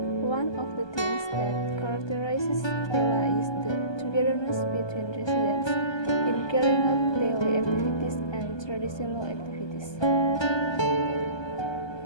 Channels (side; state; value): right; late; 1.2 ms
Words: One of the things that characterizes Pela is the togetherness between residents in carrying out daily activities and traditional activities.